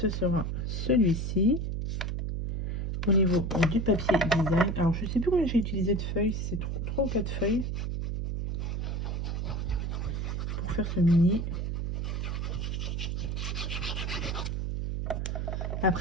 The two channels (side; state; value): right; noise; hum, 2 dB below the sound